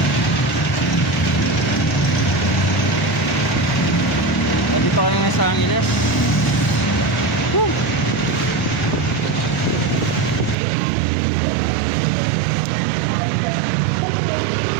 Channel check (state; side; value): drops out; left; at 10.6 s